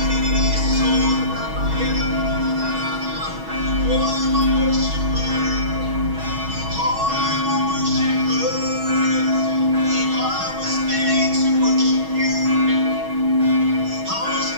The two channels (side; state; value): left; late; 6.3 ms